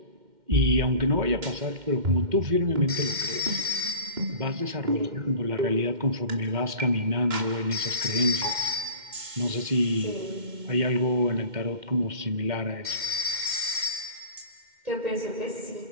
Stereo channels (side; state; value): left; late; 2.1 ms